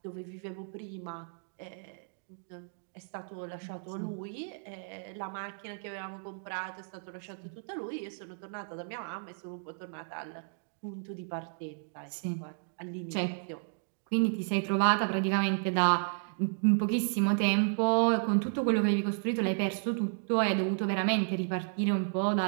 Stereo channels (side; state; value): left; silent; digital silence